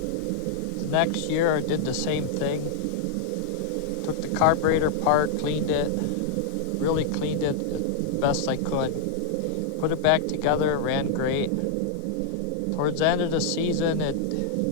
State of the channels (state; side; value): different; both; correlation -0.01